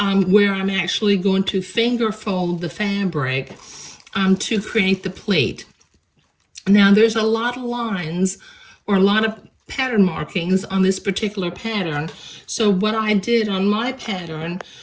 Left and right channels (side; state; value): both; identical; correlation 1.00